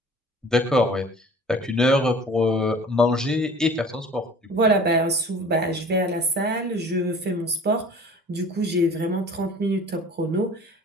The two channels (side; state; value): both; normal; correlation 0.45